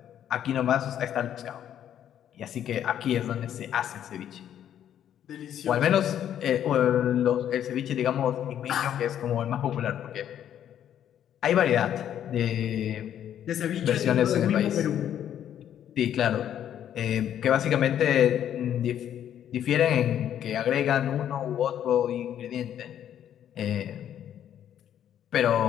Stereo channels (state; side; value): quieter; right; 10.2 dB